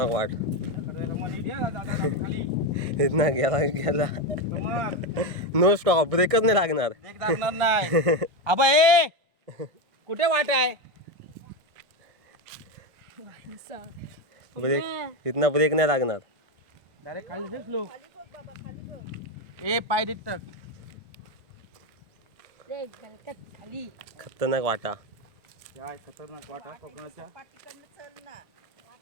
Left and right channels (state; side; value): late; left; 1.4 ms